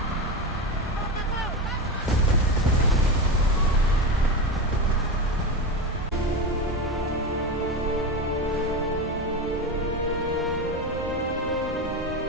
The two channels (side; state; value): both; normal; correlation 0.19